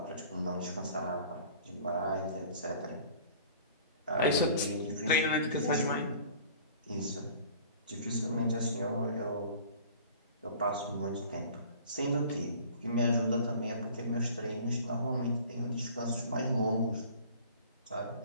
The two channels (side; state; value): both; inverted; correlation -0.47